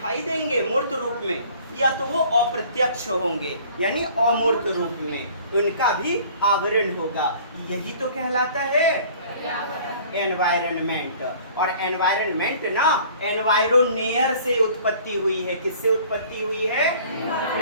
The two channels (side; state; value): both; inverted; correlation -0.51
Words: देंगे मूर्त रूप में, या तो वो अप्रत्यक्ष होंगे यानी अमूर्त रूप में, उनका भी आवरण होगा। यही तो कहलाता है एनवायरनमेंट। और एनवायरनमेंट ना एनवायरोनेयर से उत्पत्ति हुई है। किससे उत्पत्ति हुई है?